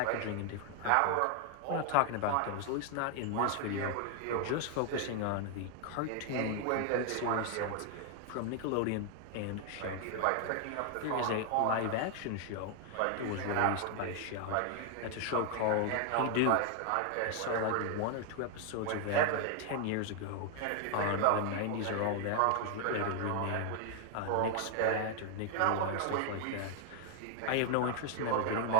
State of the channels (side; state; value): both; different; correlation 0.00